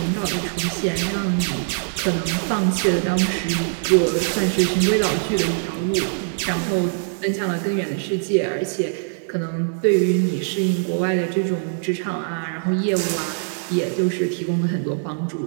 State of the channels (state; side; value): silent; left; 60 dB below the other